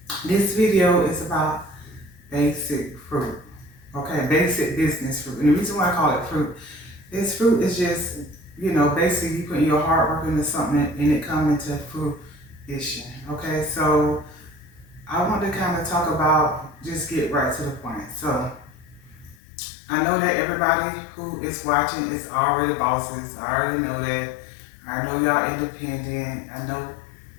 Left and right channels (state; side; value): drops out; right; at 19.4 s